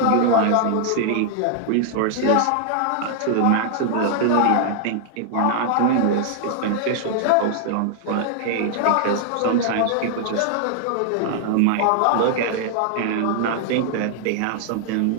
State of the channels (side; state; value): both; different; correlation -0.01